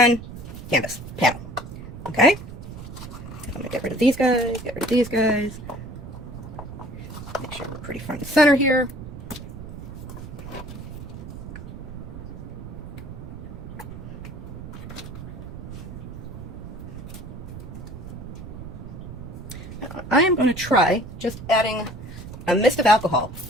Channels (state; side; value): noise; right; rumble, 11 dB below the sound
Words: canvas panel. Okay? I'm going to get rid of these guys, get rid of these guys. Make sure we're pretty front and center here. I am going to try just adding a mist of alcohol